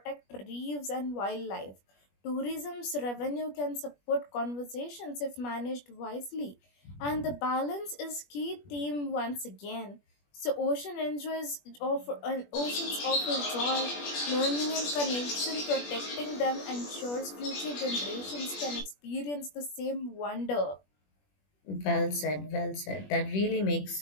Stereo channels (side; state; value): right; late; 21 ms